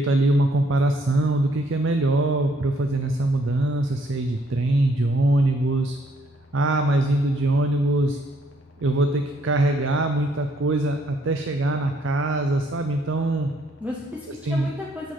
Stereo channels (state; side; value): normal; both; correlation 0.68